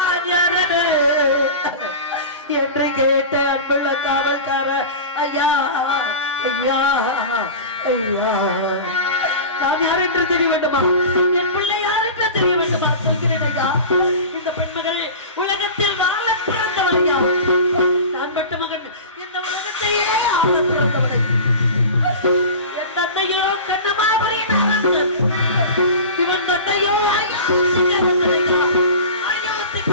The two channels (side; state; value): both; inverted; correlation -0.32